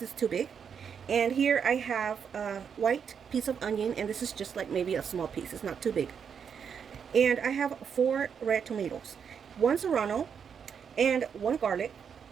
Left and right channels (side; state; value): left; quieter; 7.1 dB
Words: too big. And here I have a white piece of onion, and this is just like maybe a small piece, it's not too big. And I have 4 red tomatoes, 1 serrano, and 1 garlic.